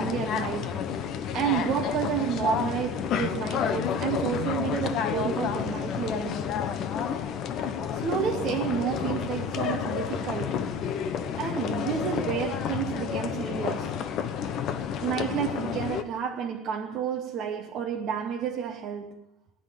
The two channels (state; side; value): normal; both; correlation 0.37